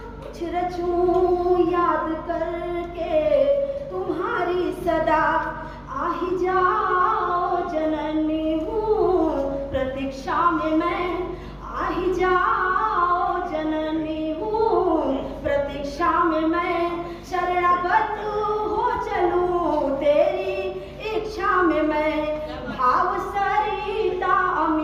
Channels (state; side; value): identical; both; correlation 1.00